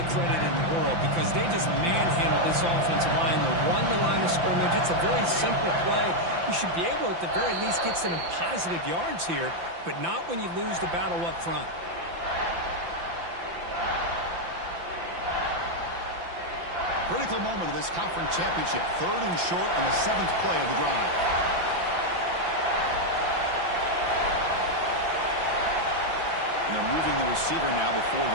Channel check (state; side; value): late; left; 5.9 ms